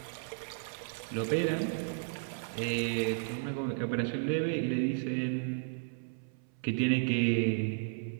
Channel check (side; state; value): left; silent; 55 dB below the other